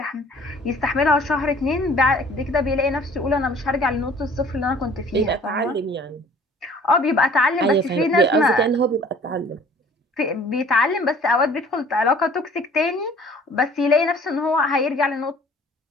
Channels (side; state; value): both; normal; correlation 0.52